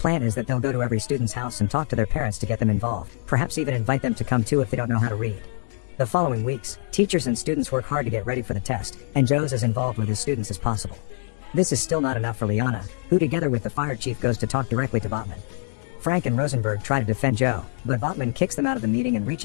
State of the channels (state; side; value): silent; right; 62 dB below the other